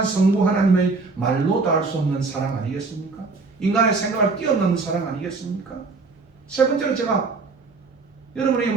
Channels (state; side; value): quieter; left; 4.0 dB